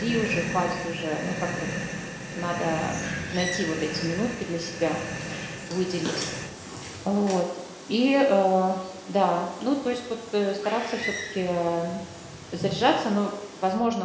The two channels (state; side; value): identical; both; correlation 1.00